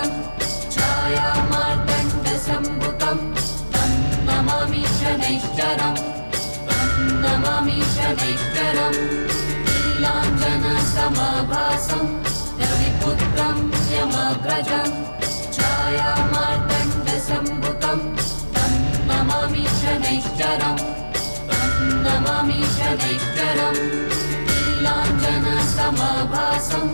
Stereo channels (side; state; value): both; inverted; correlation -1.00